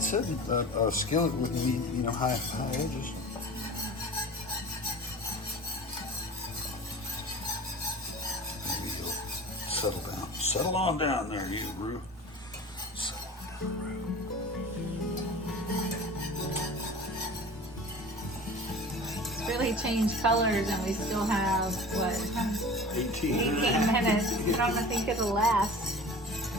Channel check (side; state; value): both; normal; correlation 0.38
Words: a skillet with high edges. Maybe you'll settle down. Settle on down there, you Rue. Settle on down, Rue. It's really changed colors and we still have, what, 18 minutes. I don't think it'll last.